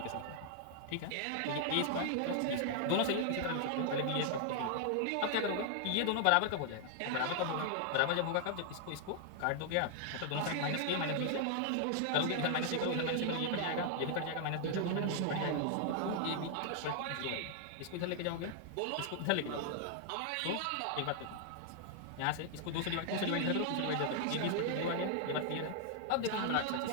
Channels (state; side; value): different; both; correlation -0.01